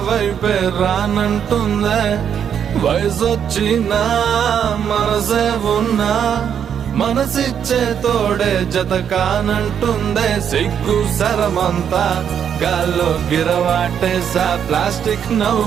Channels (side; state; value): left; quieter; 8.3 dB